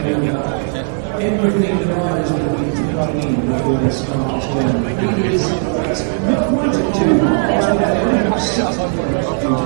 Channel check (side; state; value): left; silent; 60 dB below the other